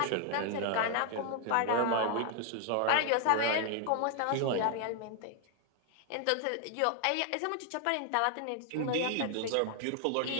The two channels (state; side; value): different; both; correlation 0.00